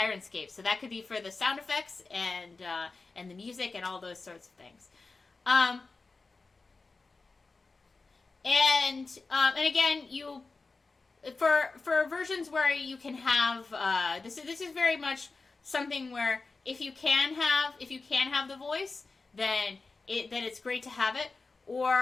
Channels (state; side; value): quieter; right; 3.9 dB